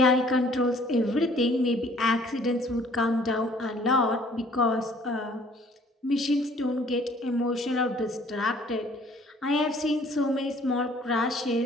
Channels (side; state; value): both; normal; correlation 0.57